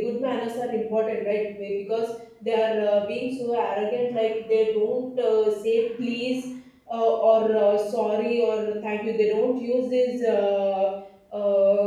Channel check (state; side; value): identical; both; correlation 1.00